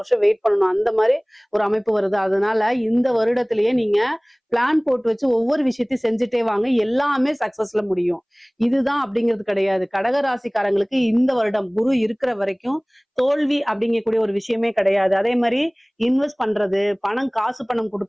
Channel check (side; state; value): both; identical; correlation 1.00